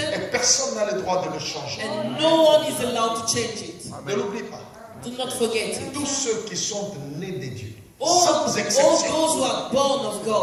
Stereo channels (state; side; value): identical; both; correlation 1.00